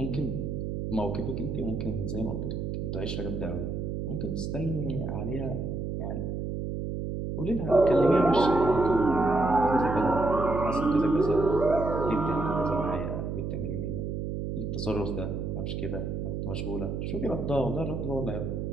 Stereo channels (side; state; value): right; noise; hum, 3 dB below the sound